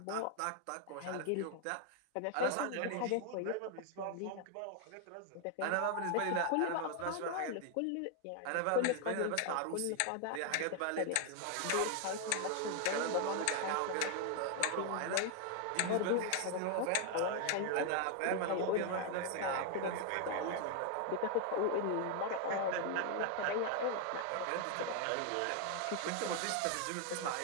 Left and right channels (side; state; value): both; different; correlation 0.00